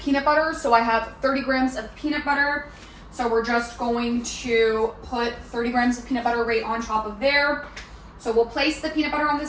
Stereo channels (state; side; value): identical; both; correlation 1.00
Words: butter. So I have 30 grams of peanut butter. So we're just going to put 30 grams of peanut butter right on top of there. So we'll place the peanut butter on the